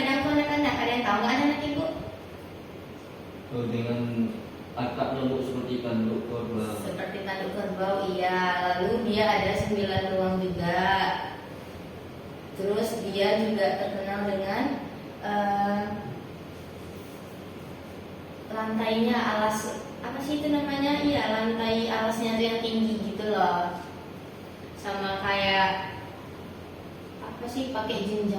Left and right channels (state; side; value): identical; both; correlation 1.00